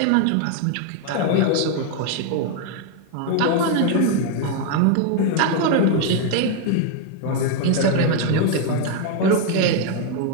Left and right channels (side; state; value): both; different; correlation 0.01